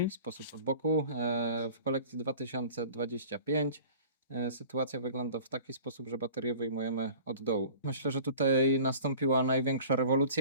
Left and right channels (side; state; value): both; inverted; correlation -0.44